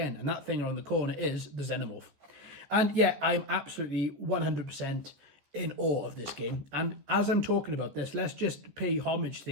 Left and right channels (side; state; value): left; late; 14 ms